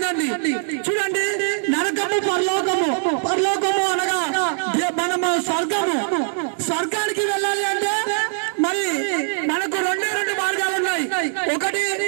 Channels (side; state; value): left; silent; digital silence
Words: చూడండి, నరకము పరలోకము. పరలోకము అనగా మనము స్వర్గానికి వెళ్ళాలి అంటే మరి మనకు రెండు మార్గాలు ఉన్నాయి. ఒకటి,